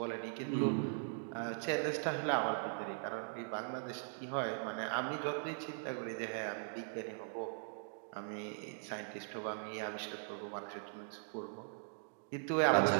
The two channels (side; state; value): left; silent; digital silence